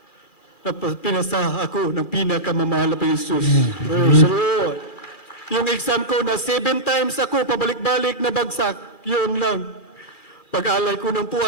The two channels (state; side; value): late; right; 2.4 ms